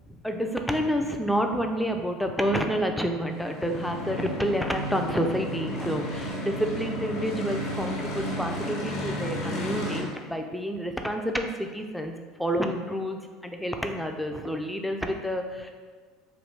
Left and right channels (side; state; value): both; normal; correlation 0.64